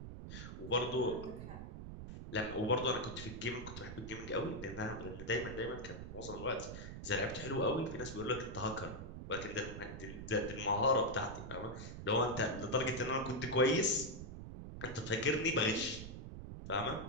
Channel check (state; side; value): noise; right; rumble, 9 dB below the sound